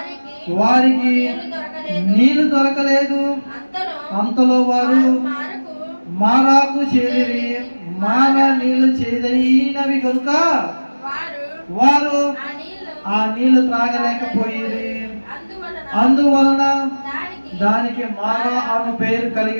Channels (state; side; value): inverted; both; correlation -1.00